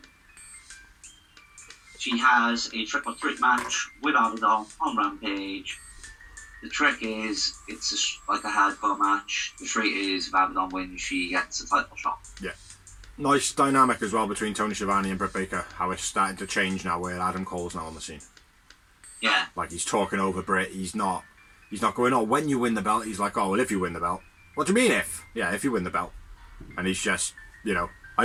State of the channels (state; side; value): identical; both; correlation 1.00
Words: She has a triple threat match with Abaddon on Rampage. The trick is, it's like a hardcore match. The trick is, if Abaddon wins, she gets a title shot. Yeah. Nice dynamic as well between Tony Schiavone and Britt Baker. How it's starting to change now where Adam Cole's now on the scene. Yeah. Like he's talking over Britt. He's not going, oh, when you win the belt. He's like, oh, well, if you win the belt. What do you mean if? Yeah, if you win the belt. And he's just, I